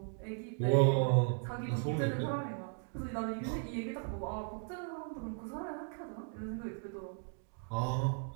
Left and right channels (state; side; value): silent; left; 53 dB below the other